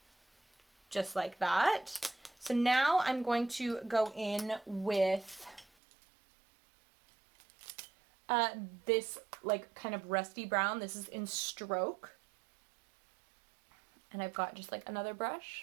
Just like that. So now I'm going to go in with this like kind of rusty brown. This is in Stroke. And I've got just like another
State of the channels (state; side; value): drops out; left; at 5.7 s